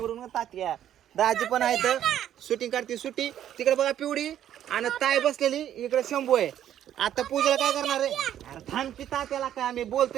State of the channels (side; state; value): left; quieter; 10.9 dB